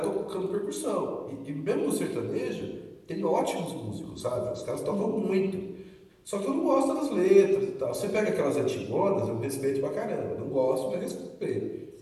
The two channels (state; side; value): identical; both; correlation 1.00